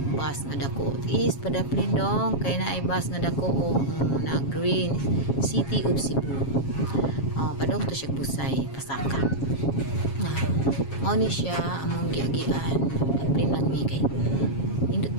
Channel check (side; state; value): right; late; 7.3 ms